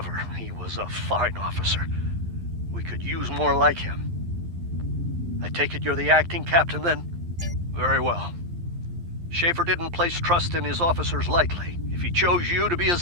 He was a fine officer. We could use more like him. I take it you're the acting captain, then? Very well. Schaefer didn't place trust in his officers lightly. If he chose you to be his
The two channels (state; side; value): late; left; 11 ms